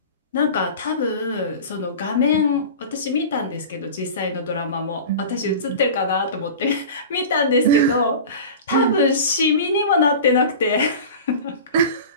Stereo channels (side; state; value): both; inverted; correlation -0.34